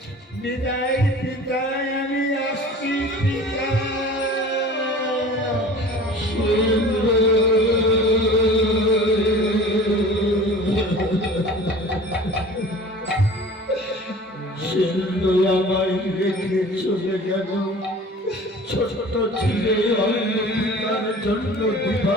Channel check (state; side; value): normal; both; correlation 0.43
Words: বিদায় পিতা, আমি আসছি পিতা। সিন্ধু আমায় রেখে চলে গেল, ছোট ছেলে অন্য পিতার জন্য